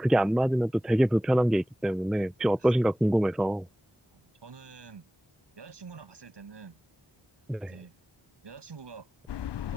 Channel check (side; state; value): both; normal; correlation 0.98